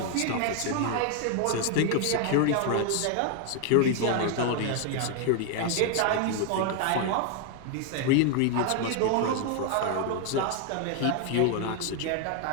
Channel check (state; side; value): different; both; correlation 0.00